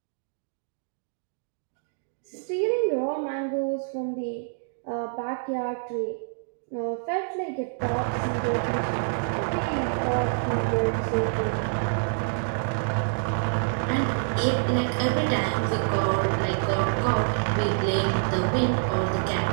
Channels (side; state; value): left; silent; digital silence